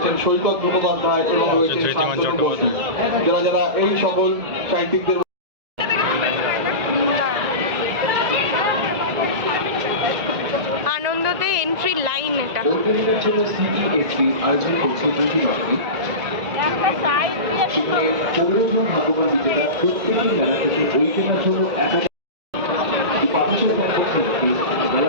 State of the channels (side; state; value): left; late; 1.9 ms